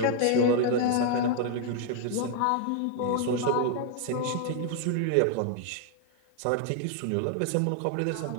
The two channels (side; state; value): both; different; correlation 0.00